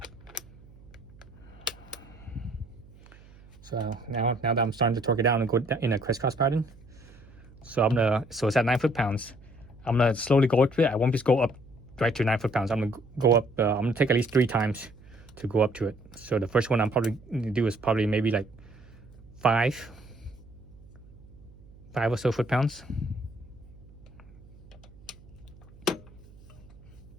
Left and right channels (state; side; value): noise; right; hum, 22 dB below the sound